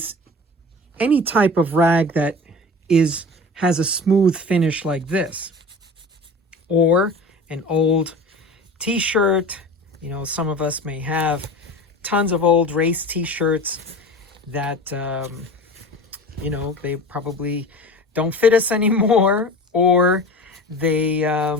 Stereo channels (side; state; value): both; normal; correlation 0.36